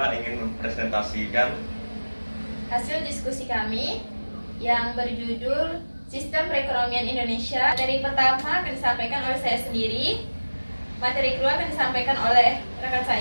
ingin mempresentasikan hasil diskusi kami yang berjudul Sistem Perekonomian Indonesia. Materi pertama akan disampaikan oleh saya sendiri. Materi kedua akan disampaikan oleh rekan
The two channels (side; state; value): both; inverted; correlation -1.00